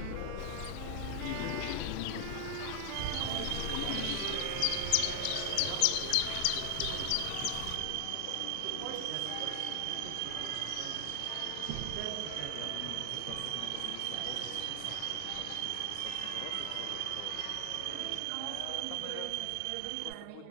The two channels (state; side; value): different; both; correlation 0.00